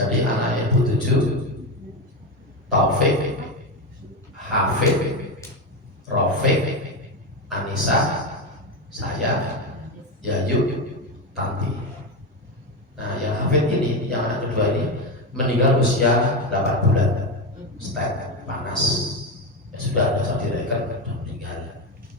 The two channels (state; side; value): normal; both; correlation 0.14